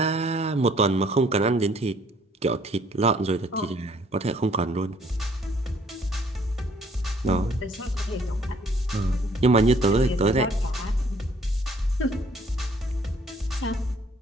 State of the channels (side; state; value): both; normal; correlation 0.61